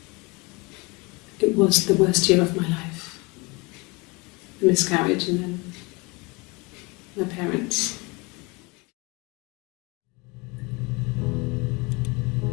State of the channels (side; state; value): right; quieter; 26.6 dB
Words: It was the worst year of my life. A miscarriage and then my parents.